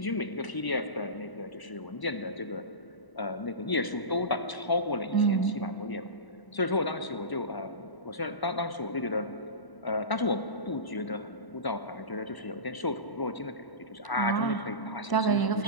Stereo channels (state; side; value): late; right; 1.0 ms